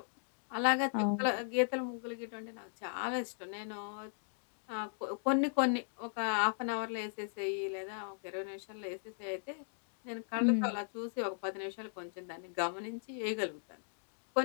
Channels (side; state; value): right; silent; digital silence